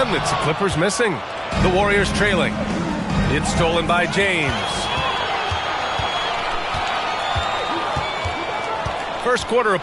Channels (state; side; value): identical; both; correlation 1.00